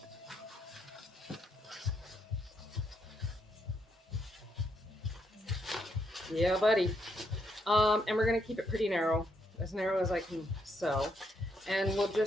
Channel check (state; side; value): normal; both; correlation 0.77